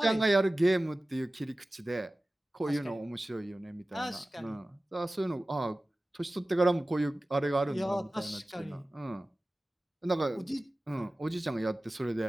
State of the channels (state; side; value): normal; both; correlation 0.96